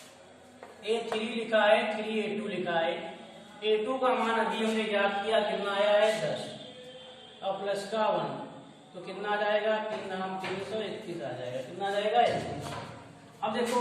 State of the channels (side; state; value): both; identical; correlation 1.00